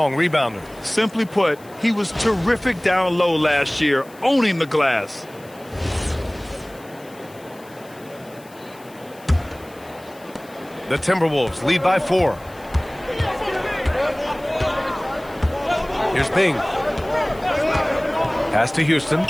rebounder. Simply put, he was terrific down low last year, owning the glass. The Timberwolves lead by 4. Here's Bing. Pass to Houston.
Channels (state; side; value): noise; left; hiss, 25 dB below the sound